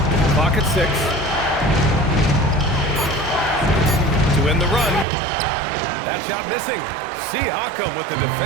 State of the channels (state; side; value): drops out; left; at 5.1 s